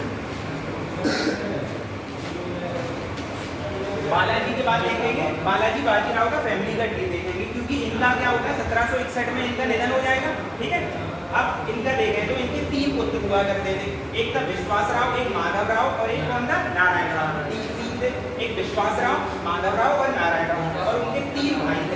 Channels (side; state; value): both; identical; correlation 1.00